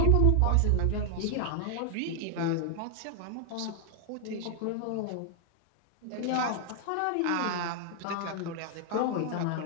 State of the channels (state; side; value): different; both; correlation 0.00